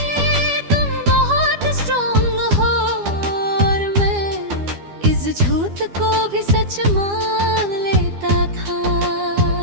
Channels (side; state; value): left; late; 12 ms